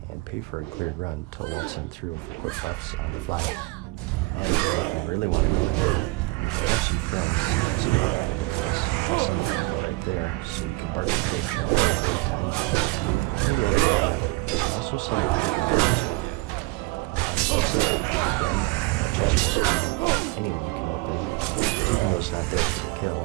and pay for a cleared run to waltz them through for quick buffs on the fly. And if you really want to go in, you should have some friends, some right there, so you can bark the bitch all the time. Also some anyone can open, even though it's not there for the kill.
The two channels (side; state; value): left; quieter; 22.9 dB